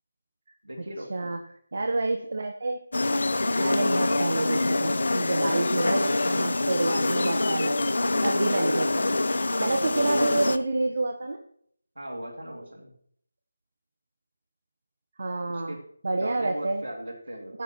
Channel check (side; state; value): both; inverted; correlation -0.96